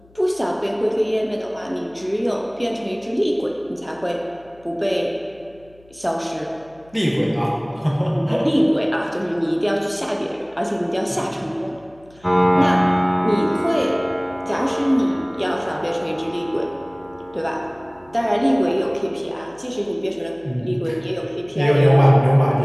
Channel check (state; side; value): noise; left; hum, 28 dB below the sound